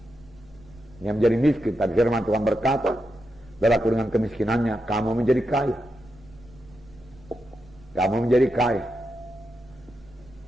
Dia menjadi miskin, tapi firman Tuhan berkata, saudaraku, dengan kemiskinannya, kamu menjadi kaya. Kamu menjadi kaya.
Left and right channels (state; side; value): noise; right; rumble, 24 dB below the sound